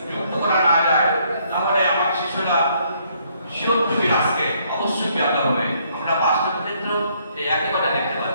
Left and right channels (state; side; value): inverted; both; correlation -0.69